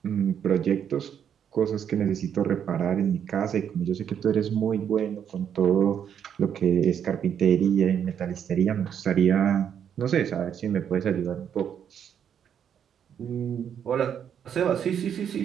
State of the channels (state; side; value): quieter; left; 8.5 dB